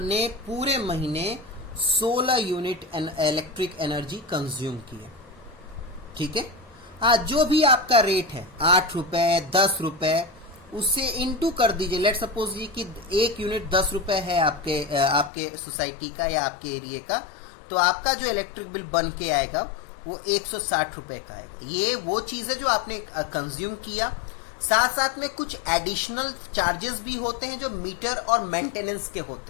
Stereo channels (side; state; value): right; drops out; at 15.3 s